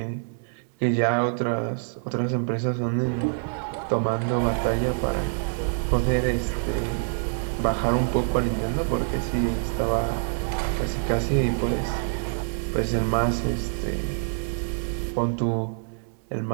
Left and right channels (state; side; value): silent; left; 61 dB below the other